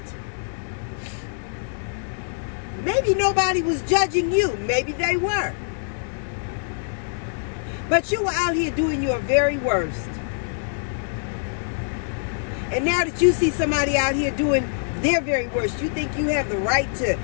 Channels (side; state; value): right; silent; digital silence